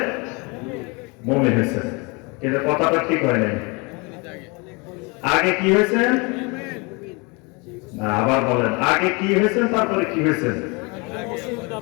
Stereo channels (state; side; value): quieter; right; 29.3 dB